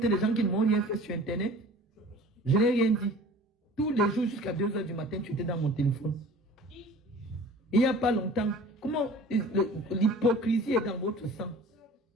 les gens qui ne m'ont rien fait sur Internet. Je n'ai rien dit. Tous les jours jusqu'à 2 h du matin, tu étais dans mon téléphone. Il n'y a pas longtemps, comment l'hypocrisie est dans votre sang.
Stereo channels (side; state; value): both; normal; correlation 0.44